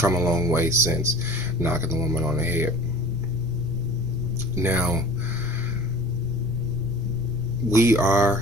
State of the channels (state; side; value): noise; right; rumble, 10 dB below the sound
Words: a long way since knocking the woman on the head. Now, we are